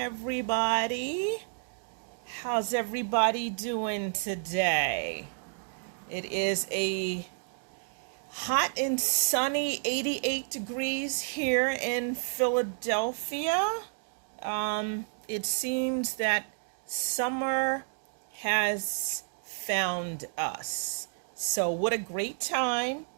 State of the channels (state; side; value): silent; left; digital silence